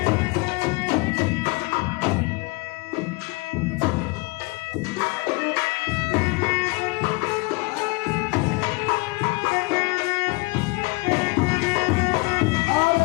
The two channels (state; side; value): quieter; right; 26.2 dB